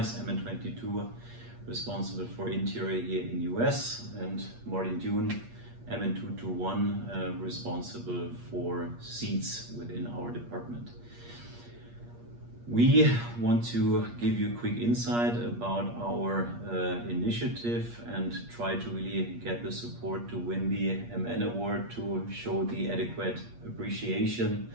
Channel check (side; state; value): left; late; 8.5 ms